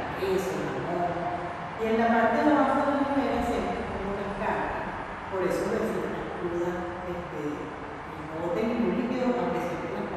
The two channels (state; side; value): identical; both; correlation 1.00